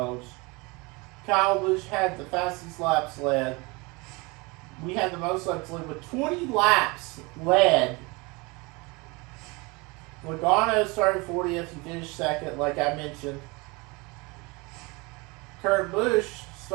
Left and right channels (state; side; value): quieter; left; 26.4 dB